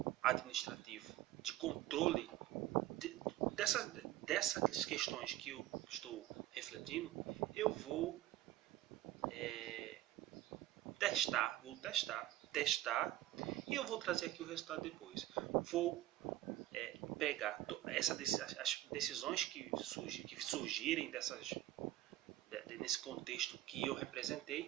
administrativo de controle dessas questões que eu estou refletindo, eu vou vou testar e eu vou trazer aqui o resultado depois. Vou pegar as decisões que surgirem nesse contexto que eu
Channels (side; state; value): left; quieter; 14.7 dB